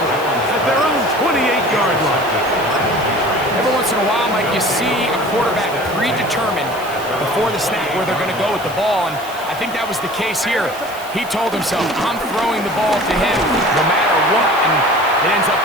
at their own 28-yard line. Every once in a while, Mike, you see a quarterback predetermined before the snap where they're going to go with the ball, and I think that was the case here. He told himself, I'm throwing the ball to him no matter what, and it ends up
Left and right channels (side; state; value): right; noise; hiss, 17 dB below the sound